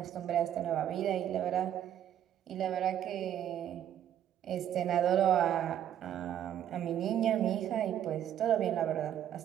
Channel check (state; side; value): quieter; left; 10.5 dB